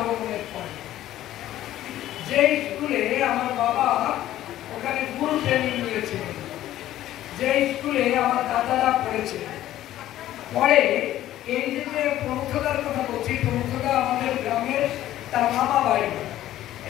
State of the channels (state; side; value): quieter; right; 13.5 dB